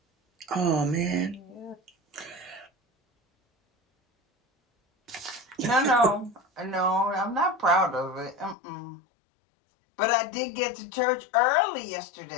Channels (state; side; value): drops out; right; at 8.6 s